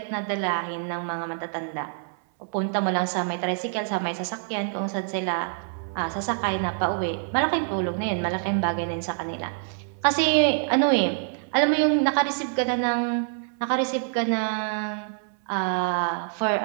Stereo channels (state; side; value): silent; left; 61 dB below the other